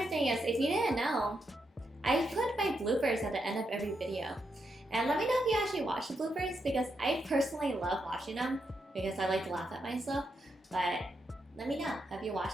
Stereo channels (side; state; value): both; normal; correlation 0.82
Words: thing is, if you didn't know, I put my bloopers at the end of every video. And let me know if you actually watch the bloopers because I personally love watching them because I like to laugh at myself. But let me know. Have you